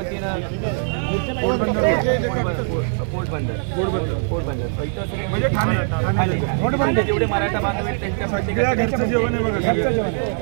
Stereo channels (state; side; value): silent; left; digital silence